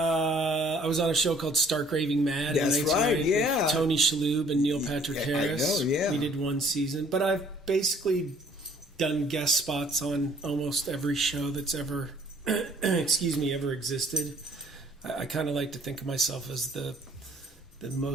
was on a show called Stark Raving Mad. That's right, yeah. With Tony Shalhoub and Neil Patrick Harris. I know, yeah. We did one season. But I've basically done guest spots on almost every show that's ever, ever existed. I kind of like to think of myself as the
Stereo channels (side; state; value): both; normal; correlation 0.59